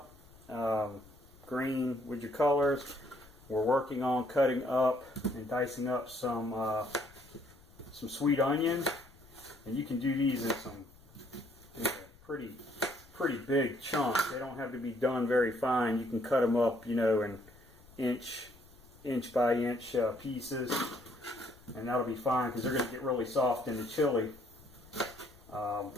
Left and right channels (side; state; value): left; noise; rumble, 25 dB below the sound